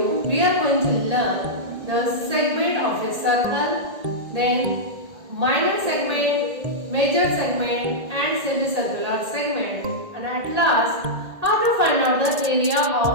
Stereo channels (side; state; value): left; late; 1.8 ms